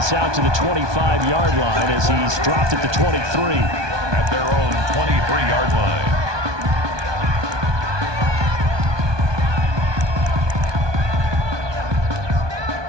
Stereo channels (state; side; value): late; left; 1.2 ms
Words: out to the 25-yard line as he's dropped at the 23. At their own 23-yard line.